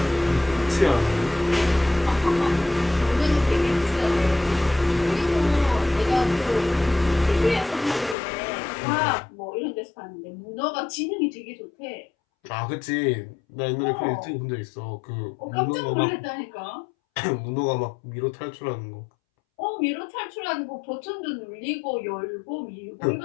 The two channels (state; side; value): drops out; right; at 8.2 s